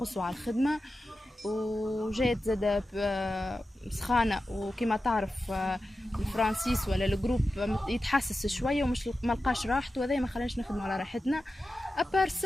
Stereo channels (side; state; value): both; normal; correlation 0.92